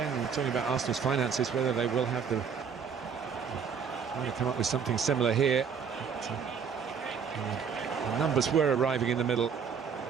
talking about Arsenal's finances, whether they will have the... trying to come up with something similar here. But, the numbers were arriving in the middle.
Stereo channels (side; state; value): left; quieter; 6.6 dB